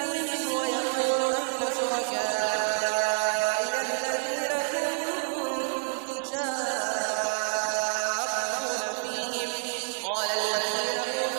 ويقول أين شركائي الذين كنتم تشاقون فيهم قال الذين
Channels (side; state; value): left; silent; 59 dB below the other